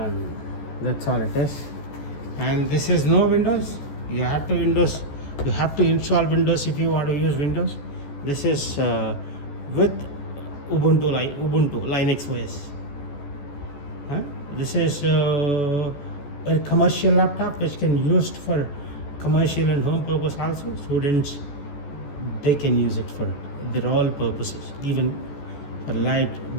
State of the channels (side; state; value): right; late; 14 ms